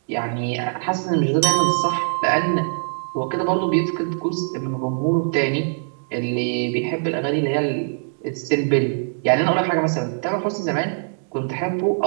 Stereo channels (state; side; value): silent; left; 64 dB below the other